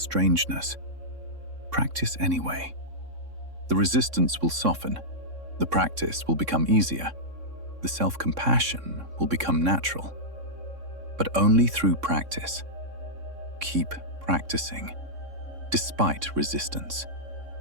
Practice anyway. The resistance will soften. The practice will become easier. The self-compassion will become natural. But only through practice. Keep practicing, despite resistance.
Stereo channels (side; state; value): left; late; 3.6 ms